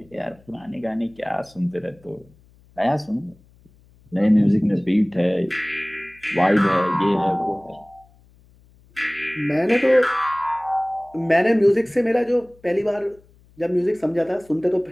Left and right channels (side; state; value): left; noise; hum, 29 dB below the sound